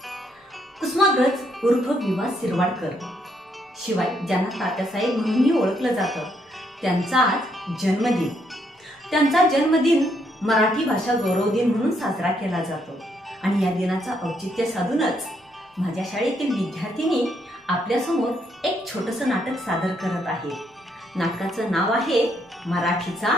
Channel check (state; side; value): normal; both; correlation 0.74